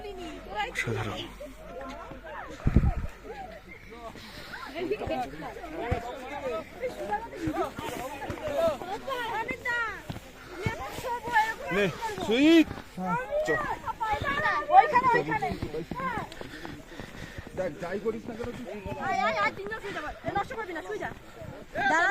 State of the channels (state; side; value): identical; both; correlation 1.00